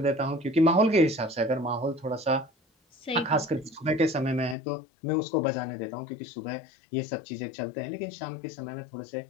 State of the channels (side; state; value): right; drops out; at 4.5 s